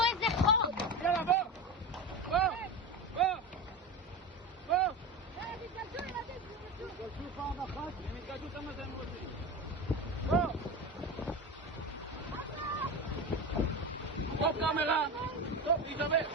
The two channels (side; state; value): both; normal; correlation 0.23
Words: איזה חור! יאללה, בוא! תיכנסו ילדים, תיכנסו! תגלשו פעם אחת. הם יתגשו כמה שהם רוצים. Stop camera! Stop, Isabel!